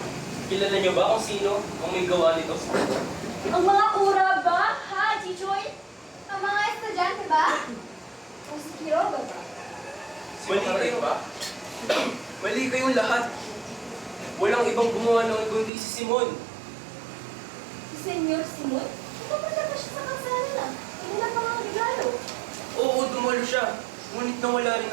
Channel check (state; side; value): drops out; left; at 15.7 s